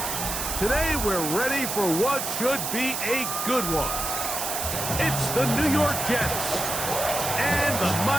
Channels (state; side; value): noise; right; hiss, 3 dB below the sound